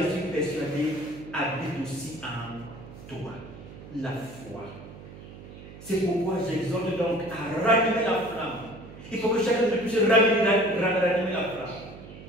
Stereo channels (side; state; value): right; noise; hum, 16 dB below the sound